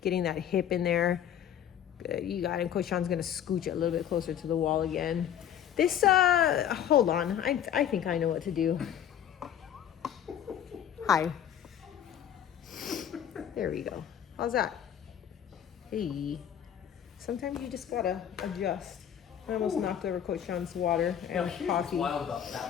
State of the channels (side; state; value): right; quieter; 9.7 dB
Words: getting that hip in there. Good, you got it. Coach Sean's gonna scooch it a little bit closer to the wall again. This, hold on. I think I know what to do. Hi. There we go. How's that? Hey. Sometimes you just gotta adjust. I almost knocked over Coach Sean's water Now, and here's coffee. what's wild about